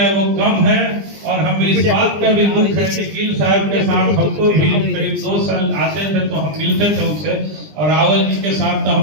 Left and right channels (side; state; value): left; late; 20 ms